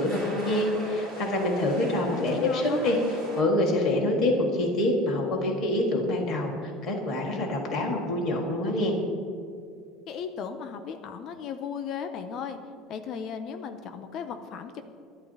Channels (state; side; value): normal; both; correlation 0.37